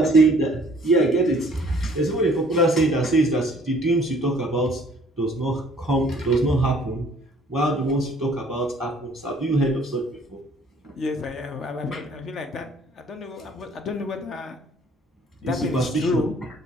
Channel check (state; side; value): normal; both; correlation 0.57